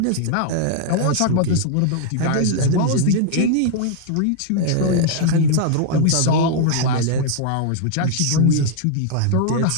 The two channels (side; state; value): both; different; correlation -0.01